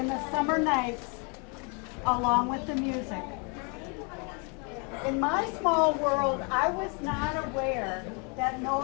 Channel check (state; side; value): quieter; right; 34.8 dB